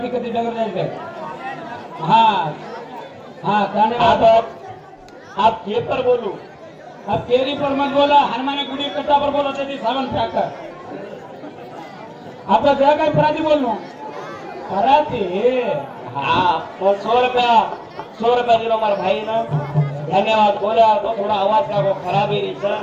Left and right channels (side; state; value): both; identical; correlation 1.00